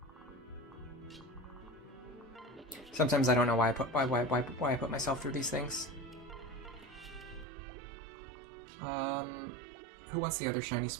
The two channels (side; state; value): left; drops out; at 7.5 s